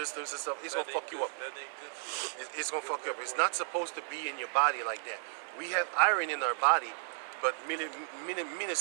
and stuff. It's gonna fuck you up. That ain't good for you. It's gonna fuck you up. It's not supposed to be in your body like that. We have iron in our body, but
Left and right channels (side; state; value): left; silent; digital silence